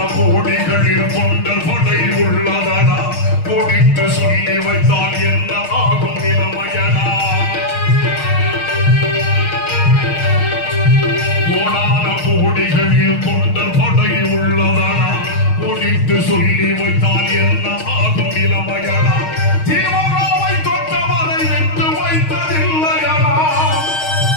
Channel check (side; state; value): right; late; 6.4 ms